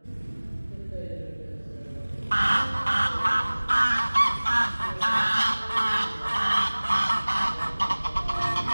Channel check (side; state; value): both; inverted; correlation -1.00